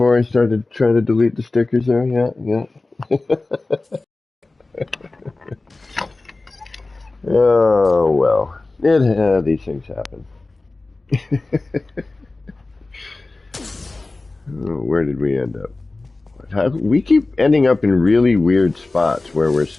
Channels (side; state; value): right; quieter; 3.2 dB